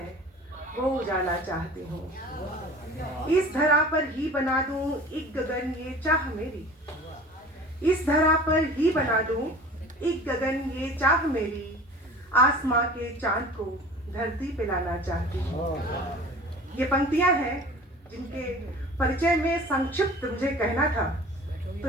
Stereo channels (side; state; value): both; normal; correlation 0.42